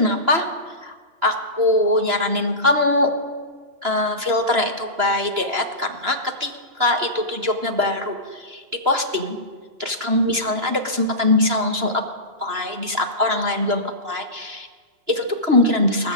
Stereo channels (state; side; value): late; left; 2.9 ms